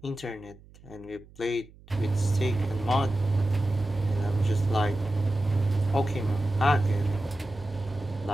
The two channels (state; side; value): noise; right; hum, 24 dB below the sound